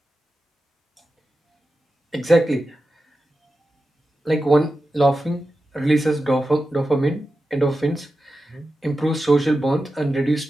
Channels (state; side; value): normal; both; correlation 0.92